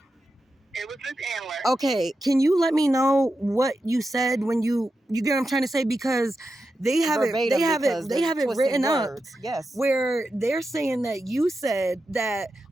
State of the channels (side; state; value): both; normal; correlation 0.89